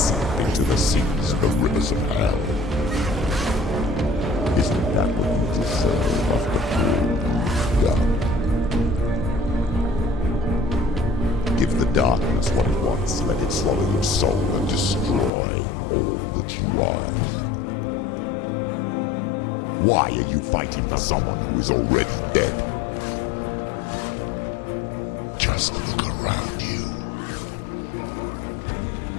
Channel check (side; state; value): right; drops out; at 15.3 s